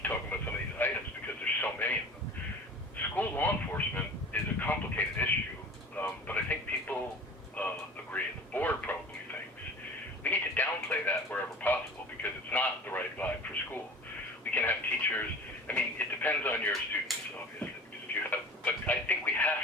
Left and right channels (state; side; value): normal; both; correlation 0.40